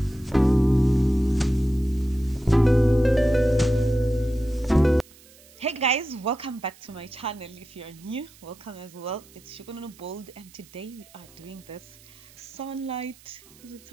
guys, welcome back to my channel. If you're new, welcome as well. It's Shugununu Bold, and today we are doing this sunset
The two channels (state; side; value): noise; right; hiss, 25 dB below the sound